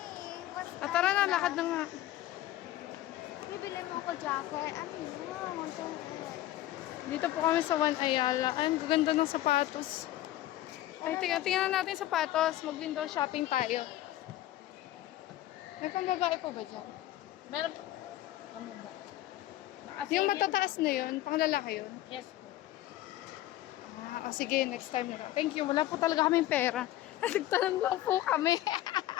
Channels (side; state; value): right; quieter; 14.7 dB